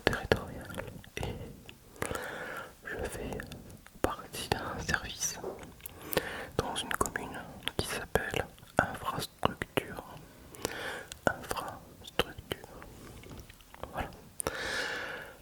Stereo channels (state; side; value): identical; both; correlation 1.00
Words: territorial et je fais partie d'un service dans une commune qui s'appelle infrastructure. Infrastructure. Voilà.